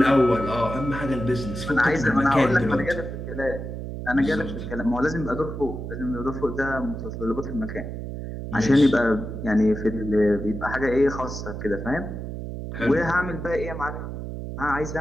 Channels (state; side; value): noise; right; hum, 7 dB below the sound